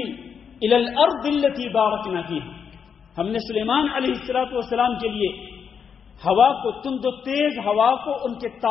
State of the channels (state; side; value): quieter; right; 6.9 dB